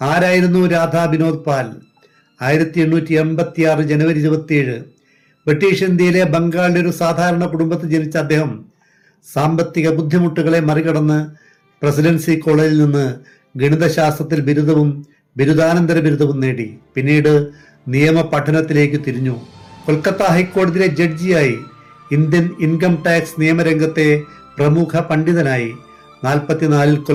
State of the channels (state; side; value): identical; both; correlation 1.00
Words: രാധാ വിനോദ് പാൽ? 1886 ജനുവരി 27 ബ്രിട്ടീഷ് ഇന്ത്യയിലെ ബംഗാളിലെ ഒരു സാധാരണ കുടുംബത്തിൽ ജനിച്ച അദ്ദേഹം സാമ്പത്തിക ബുദ്ധിമുട്ടുകളെ മറികടന്ന് പ്രസിഡൻസി കോളേജിൽ നിന്ന് ഗണിതശാസ്ത്രത്തിൽ ബിരുദവും ബിരുദാനന്തര ബിരുദവും നേടി. പിന്നീട് നിയമ പഠനത്തിലേക്ക് തിരിഞ്ഞു. കൊൽക്കത്ത ഹൈക്കോടതിയിലെ ജഡ്ജിയായി. ഇന്ത്യൻ ഇൻകം ടാക്സ് നിയമരംഗത്തെ പ്രമുഖ പണ്ഡിതനായി. 44